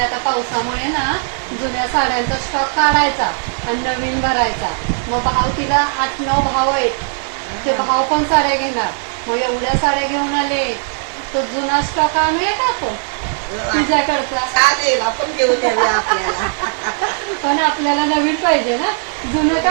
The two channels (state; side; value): silent; left; 58 dB below the other